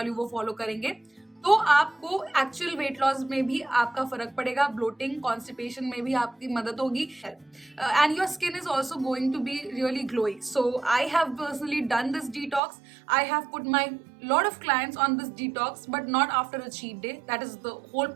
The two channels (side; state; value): left; drops out; at 12.6 s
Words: हूँ वो फॉलो करेंगे, तो आपको एक्चुअल वेट लॉस में भी आपका फर्क पड़ेगा. ब्लोटिंग, कॉन्स्टिपेशन में भी आपकी मदद होगी and your skin is also going to be really glowing. So I have personally done this detox. I have put my lot of clients on this detox, but not after a cheat day. That is the whole